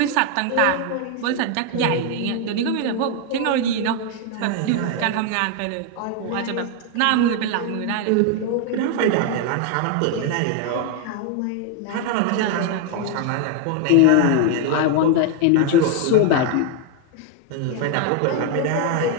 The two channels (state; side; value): different; both; correlation 0.01